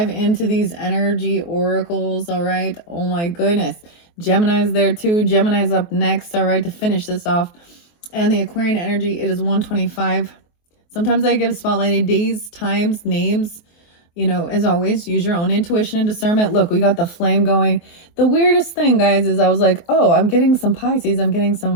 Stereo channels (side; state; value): right; late; 23 ms